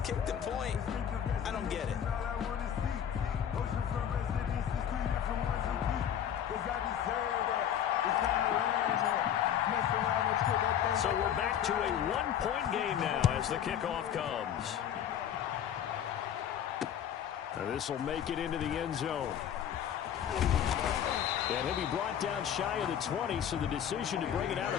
Kick the point. I don't get it. So we're back to a 1-point game now as the kickoff comes. Now this will make it into the end zone. And he'll be brought down shy of the 20, so the decision to bring it out of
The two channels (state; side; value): quieter; right; 9.5 dB